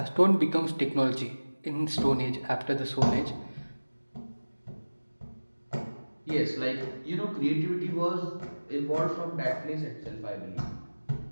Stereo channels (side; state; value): both; inverted; correlation -1.00